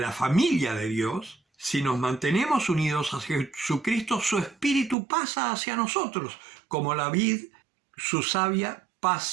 familia de Dios, si nos mantenemos unidos a Jesucristo, su Espíritu pasa hacia nosotros, como la vid, su savia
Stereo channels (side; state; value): left; drops out; at 5.0 s